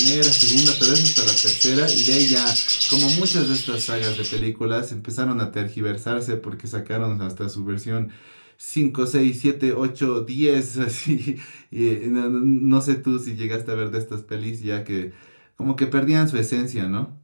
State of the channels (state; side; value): inverted; both; correlation -1.00